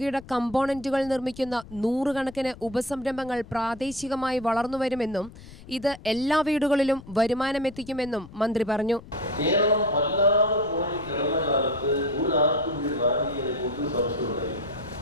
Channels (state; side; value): noise; left; rumble, 18 dB below the sound